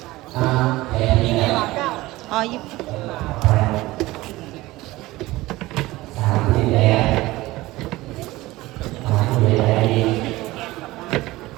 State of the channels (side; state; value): left; quieter; 18.8 dB